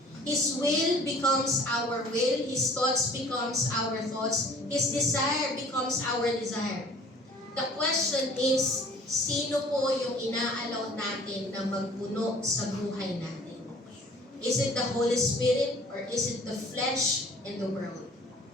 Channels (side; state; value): both; normal; correlation 0.51